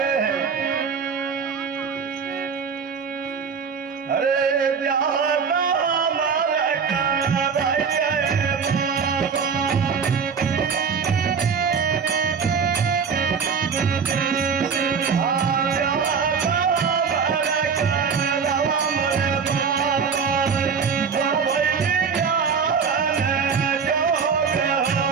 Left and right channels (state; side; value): quieter; left; 6.1 dB